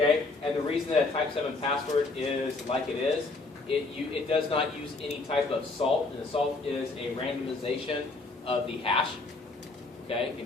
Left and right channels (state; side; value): quieter; right; 3.5 dB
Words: And the reason that a type 7 password is like it is, it does not use any type of salt, and the salt is a randomization of the hash, okay,